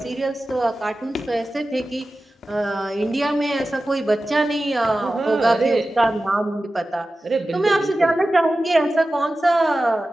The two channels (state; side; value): normal; both; correlation 0.94